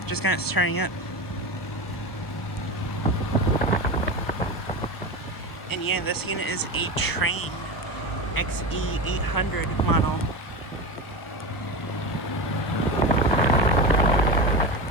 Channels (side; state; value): right; late; 1.2 ms